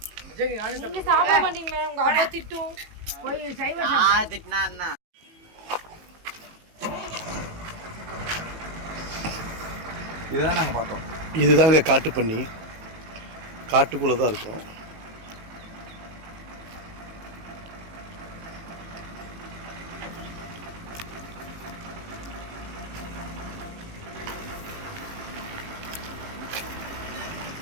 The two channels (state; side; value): late; left; 19 ms